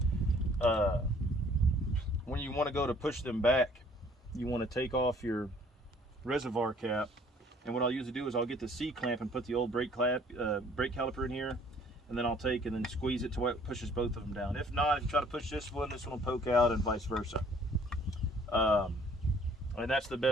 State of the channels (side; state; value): both; normal; correlation 0.58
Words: when you want to go to push them back, you want to take off your reservoir cap, and what I'll usually do is I'll get the C clamp and put the old brake caliper in here, and then I'll take and then squeeze it to where it pushes both of them down. If not, if you try to push this one will poke out, and vice versa. And that's the